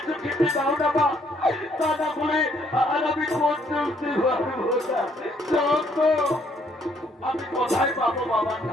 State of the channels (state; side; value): normal; both; correlation 0.67